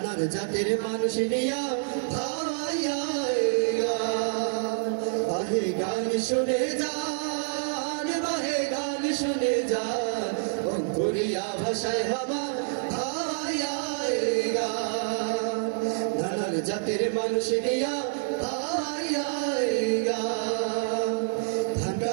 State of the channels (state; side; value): silent; left; digital silence